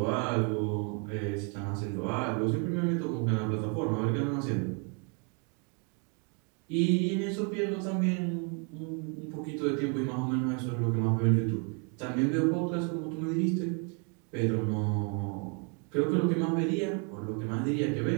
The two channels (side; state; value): left; quieter; 37.4 dB